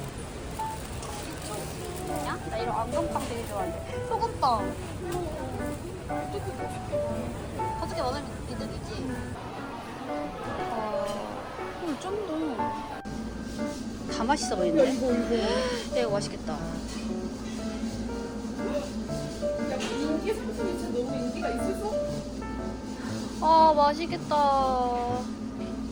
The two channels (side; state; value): both; identical; correlation 1.00